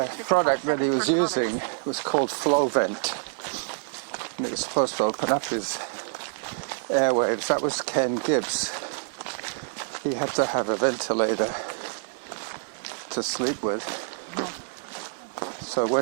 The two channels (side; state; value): left; silent; 60 dB below the other